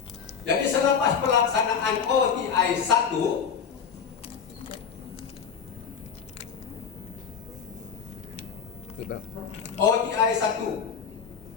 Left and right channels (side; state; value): right; quieter; 6.8 dB